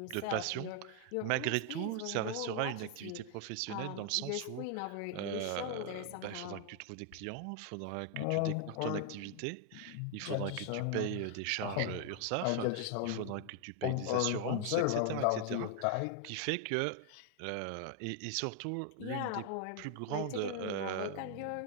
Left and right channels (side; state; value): both; different; correlation 0.00